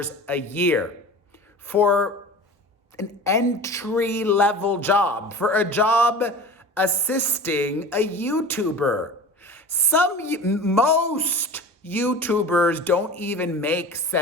a year for an entry-level job, for a job assisting a YouTuber. Most YouTubers don't even make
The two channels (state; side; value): normal; both; correlation 0.36